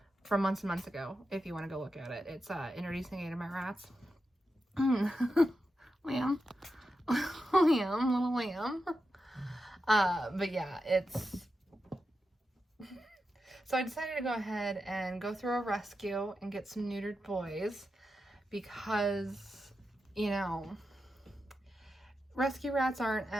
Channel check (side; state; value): both; normal; correlation 0.89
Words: from months and months ago, if you want to go look at it. It's introducing 8 of my rats. Lamb. Lamb, little lamb. But yeah, it's... So I decided to go ahead and go through a rescue and get some neutered boys, because, you know, rescue rats aren't